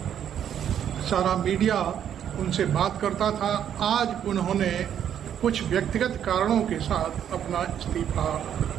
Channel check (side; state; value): left; quieter; 9.5 dB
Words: सारा मीडिया उनसे बात करता था। आज उन्होंने कुछ व्यक्तिगत कारणों के साथ अपना